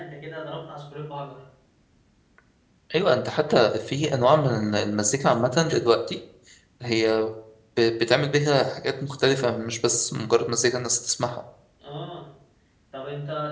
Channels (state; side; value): identical; both; correlation 1.00